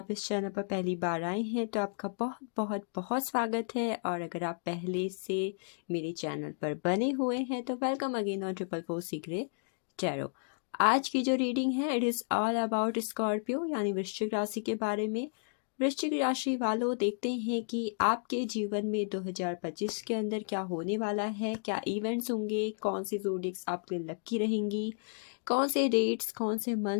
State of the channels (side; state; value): right; silent; digital silence